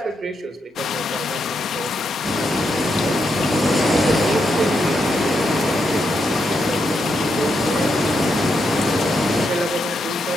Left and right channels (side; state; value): both; normal; correlation 0.82